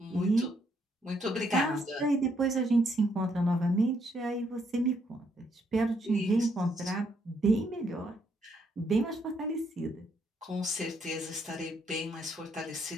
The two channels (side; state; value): both; normal; correlation 0.73